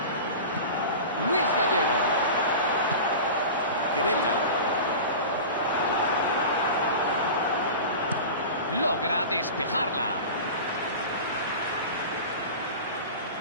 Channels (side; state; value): both; inverted; correlation -0.32